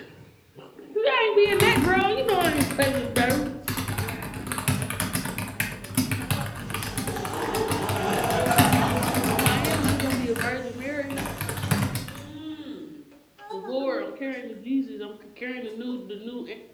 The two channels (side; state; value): both; identical; correlation 1.00